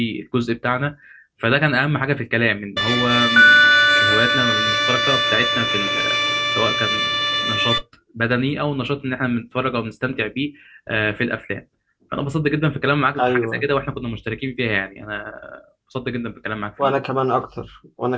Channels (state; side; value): identical; both; correlation 1.00